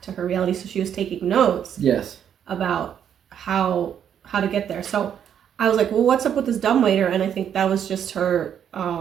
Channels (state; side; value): quieter; left; 9.0 dB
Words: to her reality. So she was taking notes. Yes. About how to get there. So I was like, well, what's up with this dumbwaiter? And I think that was just her